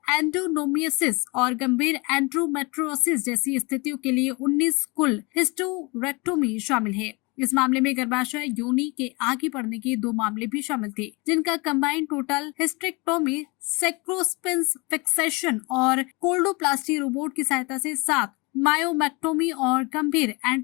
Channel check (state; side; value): quieter; right; 27.3 dB